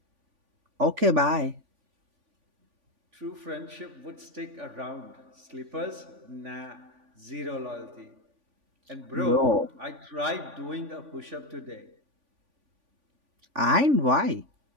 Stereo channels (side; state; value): left; late; 3.5 ms